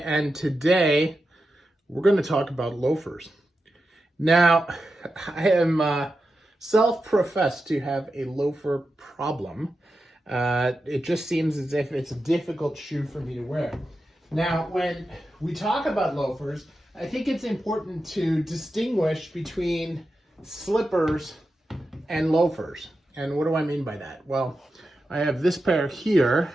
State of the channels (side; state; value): both; normal; correlation 0.90